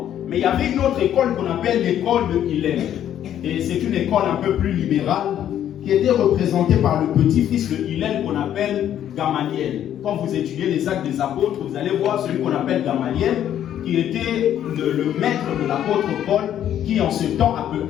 Mais il y avait une autre école qu'on appelle l'école de Hillel. Et c'est une école un peu plus libérale qui était représentée par le petit-fils de Hillel qu'on appelle Gamaliel. Quand vous étudiez les actes des apôtres, vous allez voir celui qu'on appelle Gamaliel, qui était le maître de l'apôtre Paul, qui en ce temps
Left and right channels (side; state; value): right; quieter; 10.7 dB